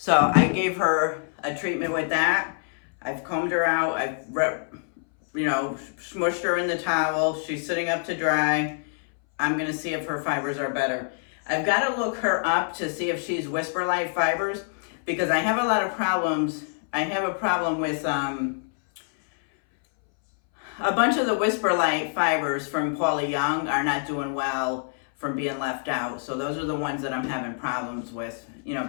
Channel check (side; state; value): right; silent; 61 dB below the other